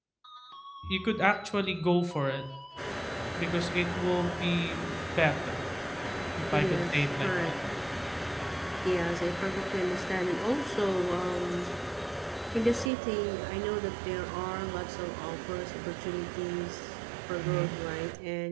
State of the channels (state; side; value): drops out; left; at 12.9 s